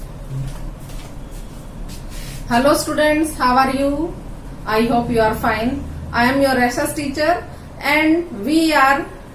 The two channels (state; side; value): identical; both; correlation 1.00